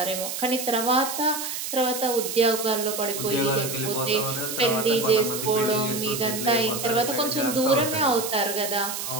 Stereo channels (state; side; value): noise; right; hiss, 5 dB below the sound